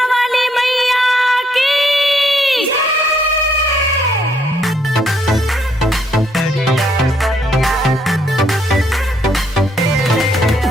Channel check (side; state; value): both; normal; correlation 0.70